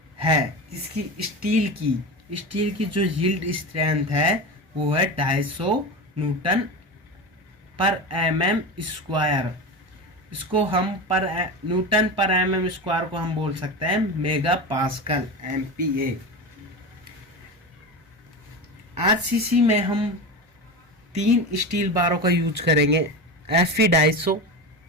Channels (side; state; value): both; normal; correlation 0.24